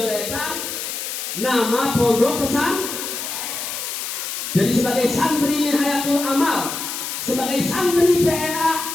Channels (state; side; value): noise; left; hiss, 5 dB below the sound